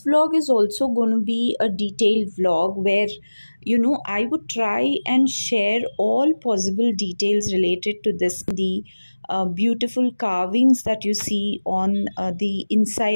vlog is also going to be a detailed vlog where, I would try and share all possible details related to this, the beautiful carvings that you see on the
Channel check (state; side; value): inverted; both; correlation -1.00